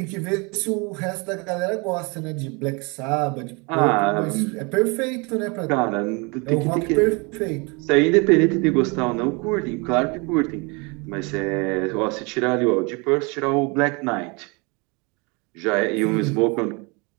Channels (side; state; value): left; quieter; 29.7 dB